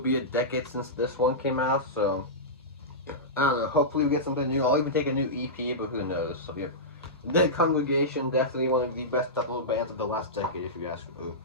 a decade since this one came out, so I don't know, hopefully we get something new. I'll even take a new EP, but who knows. So yeah, The Congregation, definitely one of the best death metal bands of the last decade, if you ask me.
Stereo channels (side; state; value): both; normal; correlation -0.14